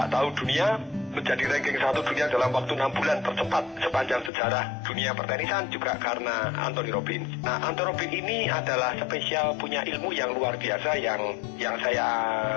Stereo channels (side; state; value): right; drops out; at 4.3 s